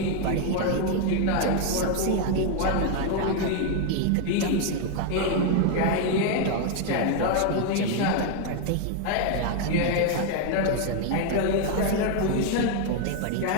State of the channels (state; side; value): different; both; correlation 0.00